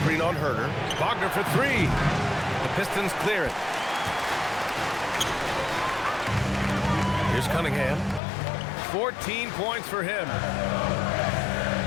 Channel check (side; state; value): right; drops out; at 8.2 s